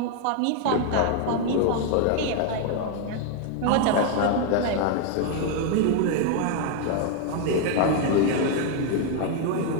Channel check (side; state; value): both; different; correlation 0.00